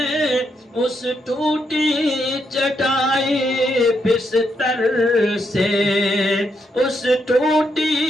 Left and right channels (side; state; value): both; normal; correlation 0.79